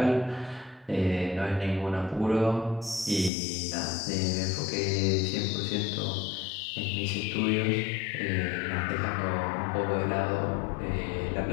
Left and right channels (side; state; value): right; drops out; at 3.3 s